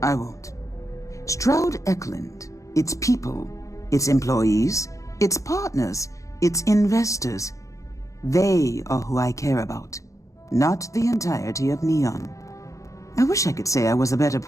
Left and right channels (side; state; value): right; late; 0.15 ms